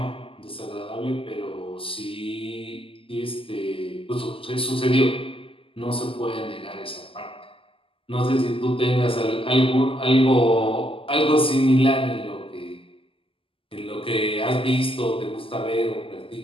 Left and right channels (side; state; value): right; late; 0.26 ms